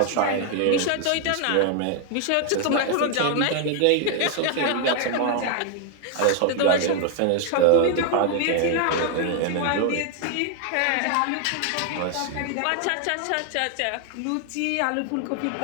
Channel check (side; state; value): both; different; correlation 0.00